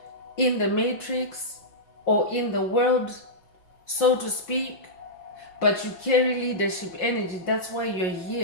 in the matrix or in the world, so to speak, but you carry leadership energy. That's why you're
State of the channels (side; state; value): right; late; 5.6 ms